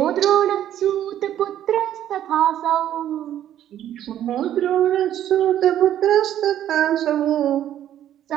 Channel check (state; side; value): quieter; left; 11.4 dB